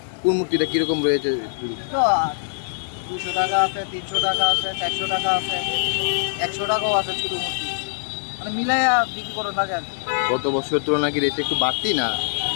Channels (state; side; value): silent; right; 64 dB below the other